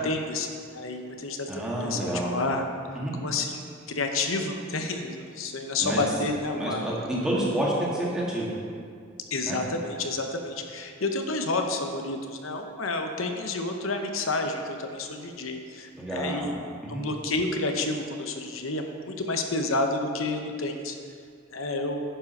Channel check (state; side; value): normal; both; correlation 0.15